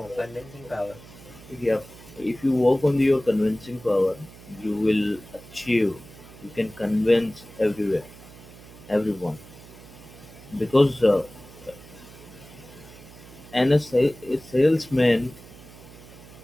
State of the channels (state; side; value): noise; right; hum, 19 dB below the sound